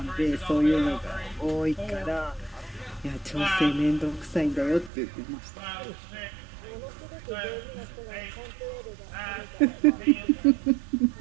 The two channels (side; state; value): left; drops out; at 4.9 s